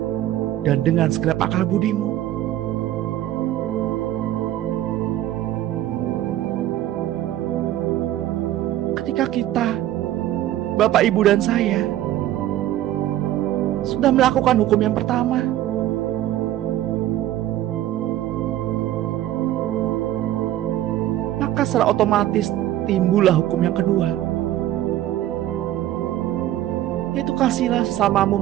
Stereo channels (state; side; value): quieter; left; 13.4 dB